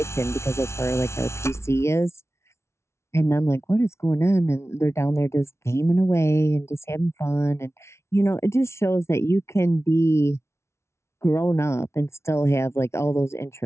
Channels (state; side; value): late; right; 0.13 ms